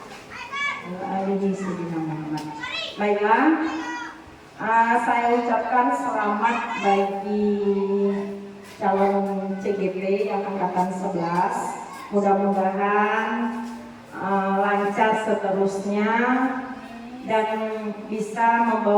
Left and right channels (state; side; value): identical; both; correlation 1.00